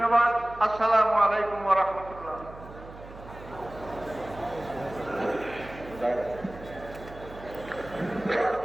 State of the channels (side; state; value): right; noise; hum, 16 dB below the sound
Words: আসসালামু আলাইকুম ওয়া রাহমাতুল্লাহ।